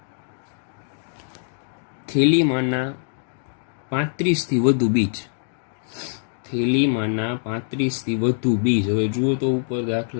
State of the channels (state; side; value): silent; right; 63 dB below the other